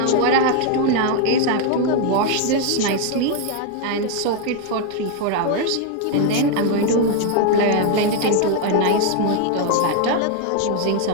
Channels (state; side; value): different; both; correlation 0.00